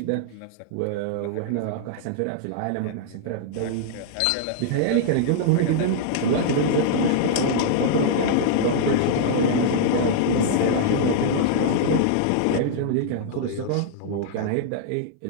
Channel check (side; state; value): both; different; correlation -0.01